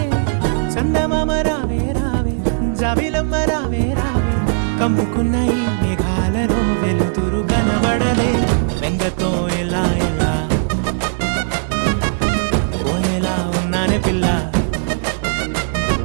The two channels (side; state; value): left; silent; digital silence